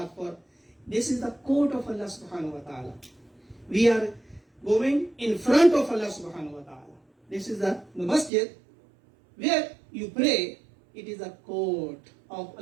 for. This is the court of Allah subhanahu wa ta'ala. We are going in front of Allah subhanahu wa ta'ala. This is the masjid where you pray. It is a court of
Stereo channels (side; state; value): left; drops out; at 8.3 s